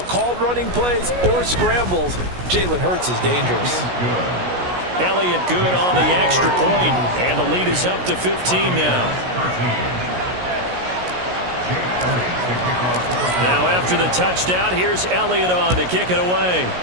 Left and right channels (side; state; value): left; late; 16 ms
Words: running plays or scrambles, Jalen Hurts is dangerous. Elliott good on the extra point, and the lead is up to 15 now. Now after the touchdown, here's Elliott on to kick it away.